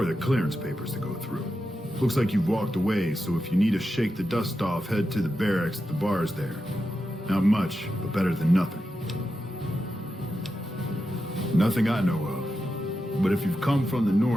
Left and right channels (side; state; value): both; normal; correlation 0.89